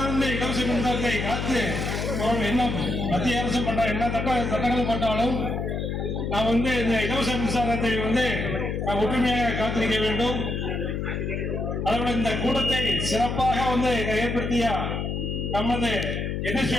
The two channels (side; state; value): left; noise; hum, 2 dB below the sound